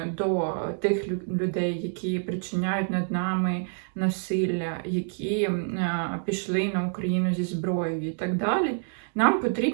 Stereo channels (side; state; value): left; silent; digital silence